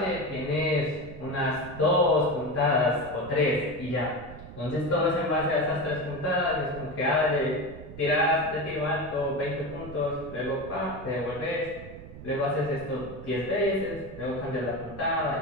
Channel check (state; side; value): noise; right; rumble, 14 dB below the sound